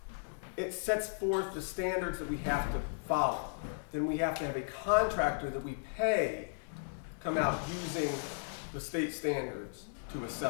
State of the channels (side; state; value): right; silent; digital silence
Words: it sets forth the standards that we have to follow. Then we have to have a contractor that we pay come out using the state standards to